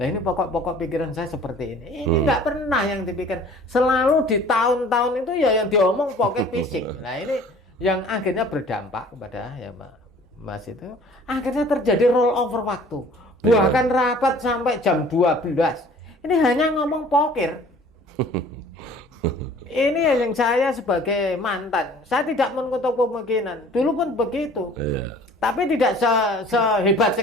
Nah, ini pokok-pokok pikiran saya seperti ini. Ini nggak pernah yang dipikir. Selalu di tahun-tahun itu ya yang diomong pokok fisik. Nah, ini yang akhirnya berdampak kepada ya Mas itu. Akhirnya terjadi roll over waktu. Bahkan rapat sampai jam 12. Ini hanya ngomong pokir. Ini yang saya sebagai mantan, saya tidak menutup kemungkinan. Dulu pun begitu. Tapi tidak sehebat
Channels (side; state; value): both; normal; correlation 0.50